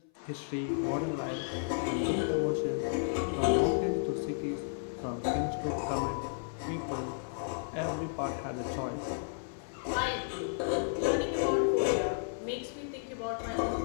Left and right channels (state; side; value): silent; right; 56 dB below the other